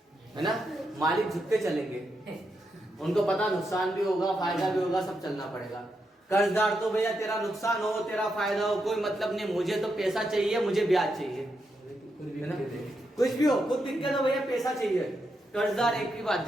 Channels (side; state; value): both; normal; correlation 0.83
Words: है ना, मालिक झुक के चलेंगे, उनको पता नुकसान भी होगा फायदा भी होगा, सब चलना पड़ेगा। कर्जदार तो भैया तेरा नुकसान हो तेरा फायदा हो कोई मतलब नहीं, मुझे तो पैसा चाहिए, मुझे ब्याज चाहिए, है ना, कुछ भी हो खुद दिक्कत हो भैया पैसा चाहिए। कर्जदार एक ही बात